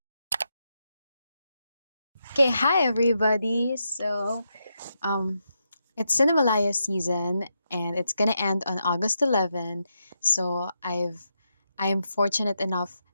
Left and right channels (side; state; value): both; inverted; correlation -0.84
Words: Okay, hi everybody. So it's CINEMALAYA season and it's gonna end on August 11. So I am fortunate enough